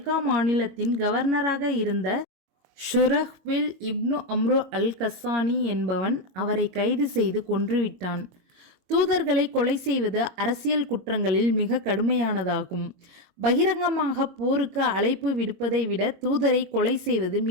மாநிலத்தின் கவர்னராக இருந்த ஷுரஹ்பில் இப்னு அம்ரு அல் கஸ்ஸானி என்பவன் அவரை கைது செய்து கொன்றுவிட்டான். தூதர்களை கொலை செய்வது அரசியல் குற்றங்களில் மிக கடுமையானதாகும். பகிரங்கமாக போருக்கு அழைப்பு விடுப்பதை விட தூதரை கொலை செய்வது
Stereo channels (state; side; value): late; left; 22 ms